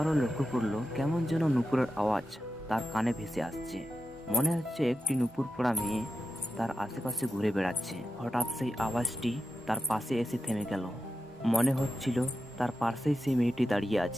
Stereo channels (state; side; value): normal; both; correlation 0.89